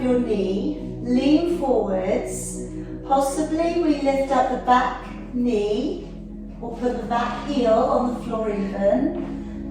your knee, lean forwards, possibly we lift up the back knee or put the back heel on the floor even,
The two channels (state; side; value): identical; both; correlation 1.00